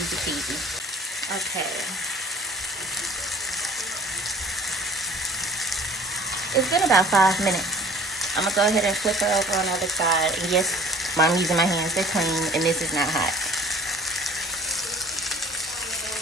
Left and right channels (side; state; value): both; normal; correlation 0.47